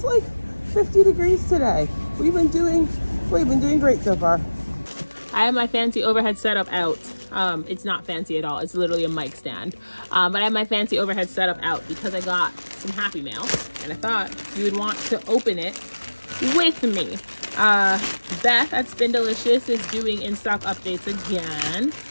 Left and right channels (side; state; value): both; inverted; correlation -1.00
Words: like 50 degrees today. We've been doing great so far. I have my fancy overhead setup out. It's not fancy at all. It's literally a mic stand. But I have my fancy overhead setup out because I got some Happy Mail, and I thought you would want to open it with me. Beth at Spindelicious is doing in-stock updates again.